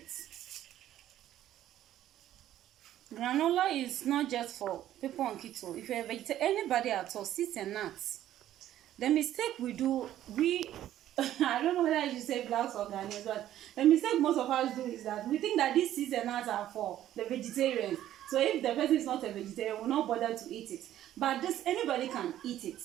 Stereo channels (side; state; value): left; quieter; 12.5 dB